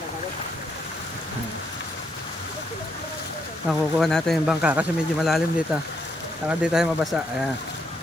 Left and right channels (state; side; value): normal; both; correlation 0.76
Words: Nakukuha natin yung bangka kasi medyo malalim dito. Saka di tayo mabasa. Ayan.